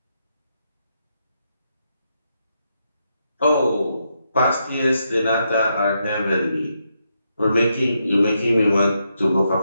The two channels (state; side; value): inverted; both; correlation -0.81